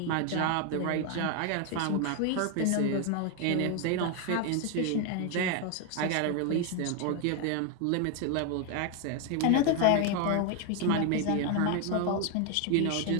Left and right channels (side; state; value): both; different; correlation 0.01